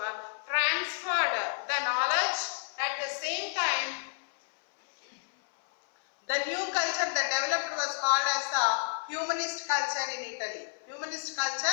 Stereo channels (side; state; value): right; silent; 58 dB below the other